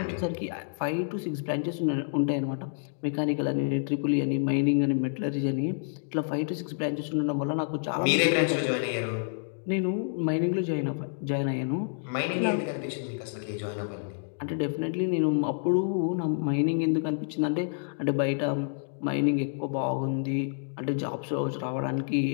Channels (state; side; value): silent; right; digital silence